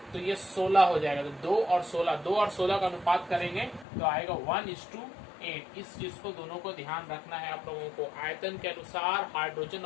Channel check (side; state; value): right; drops out; at 3.9 s